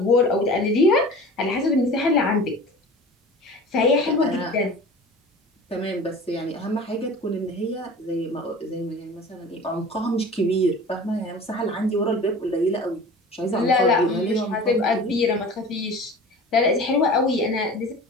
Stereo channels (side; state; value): both; normal; correlation 0.39